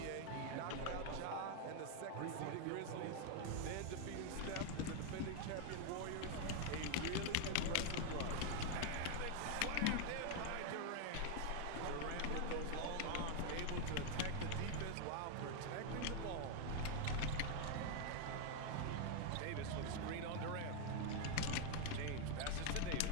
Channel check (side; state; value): both; different; correlation 0.00